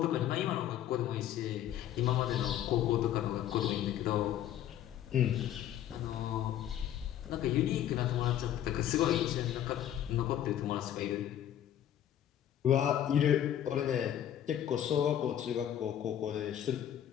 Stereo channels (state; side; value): quieter; right; 11.0 dB